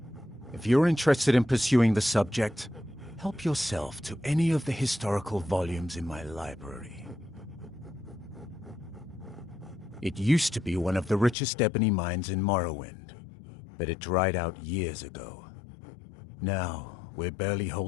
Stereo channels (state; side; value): drops out; right; at 11.4 s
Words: If you're interested in pursuing the subject, help yourself to any of the historical volumes in my library. It used to be one of the richest ebony mines in Morrowind, but it dried out years ago. Now, we're barely